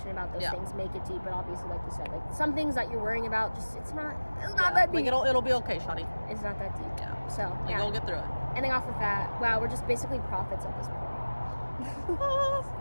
about those Yeah. things, make it deep. But obviously, like you said, like some things that you're worrying about, just it's not that Like deep. it'll be okay, shawty. It's not that deep. Yeah. So Like yeah. you'll get through it. Ending off with that. Wow, we're just basically prophets at this point.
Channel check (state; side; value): inverted; both; correlation -1.00